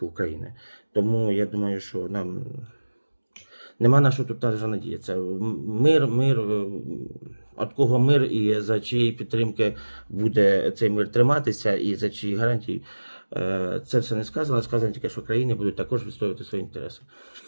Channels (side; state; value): both; inverted; correlation -1.00